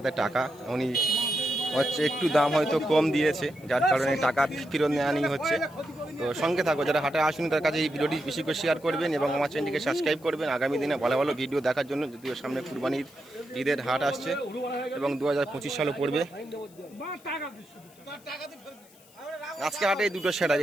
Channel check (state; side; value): noise; left; hiss, 26 dB below the sound